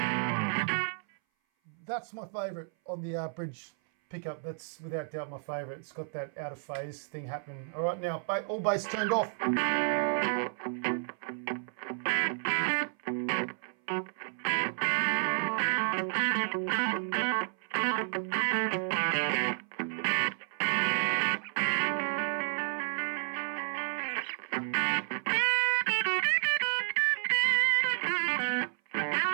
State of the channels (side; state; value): left; silent; 57 dB below the other